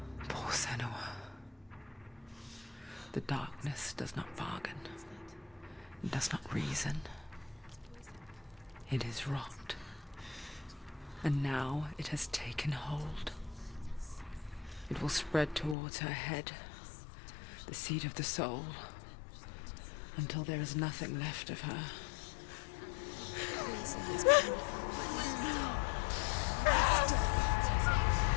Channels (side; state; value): right; drops out; at 15.8 s